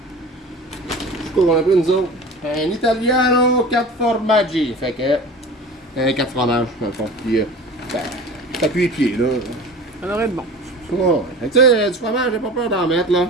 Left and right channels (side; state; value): both; normal; correlation 0.37